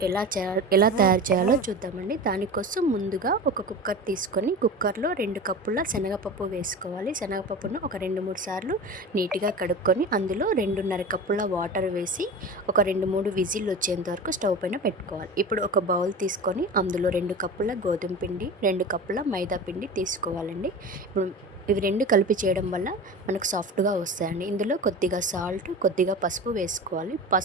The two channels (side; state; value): both; normal; correlation 0.32